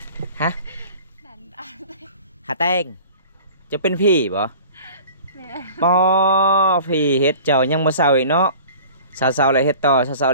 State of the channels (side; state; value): both; inverted; correlation -0.44